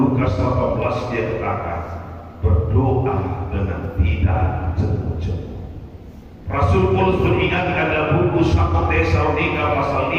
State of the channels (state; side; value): identical; both; correlation 1.00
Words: 18 dia katakan, berdoa dengan tidak jemu-jemu. Rasul Paulus mengingatkan dalam buku 1 Tesalonika pasal